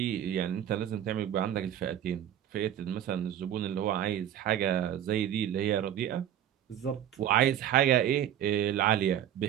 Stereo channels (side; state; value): left; quieter; 10.7 dB